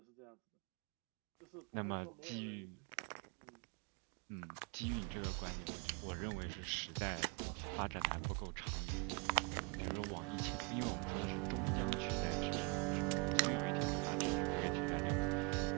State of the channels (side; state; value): left; quieter; 32.2 dB